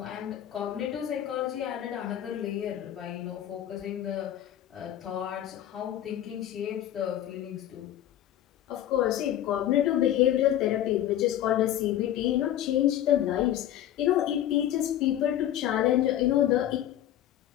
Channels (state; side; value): quieter; right; 11.9 dB